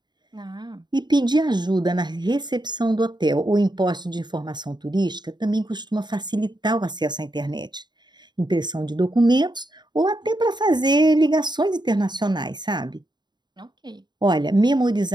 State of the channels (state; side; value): late; left; 0.21 ms